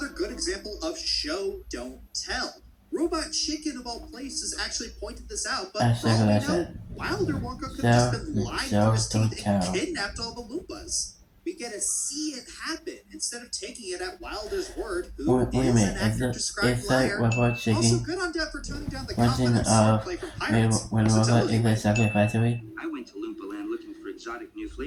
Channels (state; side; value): identical; both; correlation 1.00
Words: good example of show, don't tell. Robot Chicken of all places actually pointed this out, but That's for all we like I know, said. Wilder Wonka could have just been lying through his Don't teeth and tell. kidnapped all the Loompas. We get to see it happen instead of taking it at Wilder's word, who Wait a is minute, an actor-described it's like liar. Robot Also, Chicken good on Dad for toning down the version confidence of play from when Pirates. when It's a Robot television is a chocolate factory. I went to Loompa Land looking for exotic new